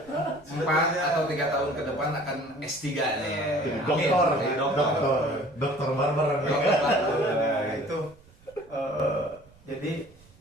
4 atau 3 tahun ke depan akan S3 nih. Dokter barber. Nah, itu jadi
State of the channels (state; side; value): noise; right; rumble, 27 dB below the sound